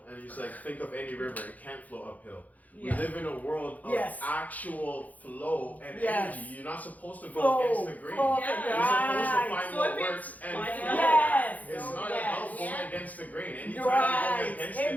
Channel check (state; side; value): late; right; 0.078 ms